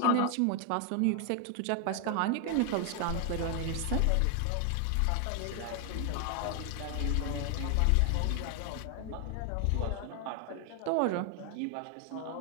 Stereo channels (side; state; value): both; different; correlation 0.00